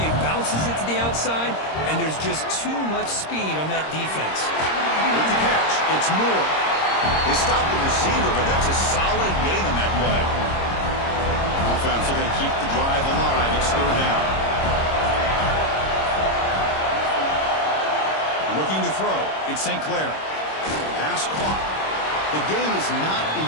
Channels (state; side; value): late; right; 26 ms